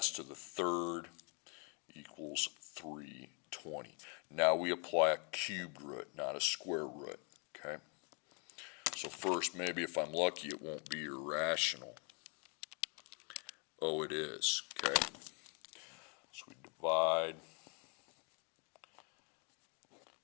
to the third equals 320. Now we apply a cubed root, not a square root. Okay, so first, maybe if I'm lucky, it won't be irrational. Oh, it is. Okay, so we divide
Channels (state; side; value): quieter; right; 36.1 dB